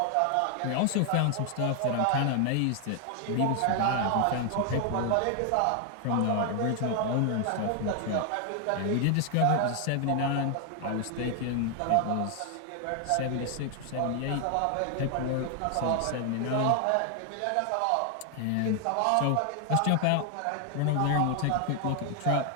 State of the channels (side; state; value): both; different; correlation 0.00